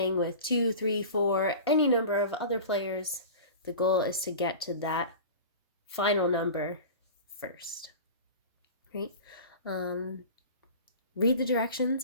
with 2, 3, 4, any number of other players, the goal is to get to that final number first. Right? Read the directions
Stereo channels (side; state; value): both; inverted; correlation -0.35